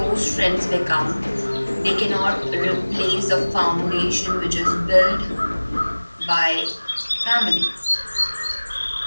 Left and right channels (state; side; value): inverted; both; correlation -1.00